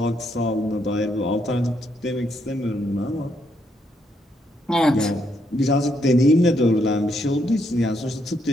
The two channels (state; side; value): normal; both; correlation 0.75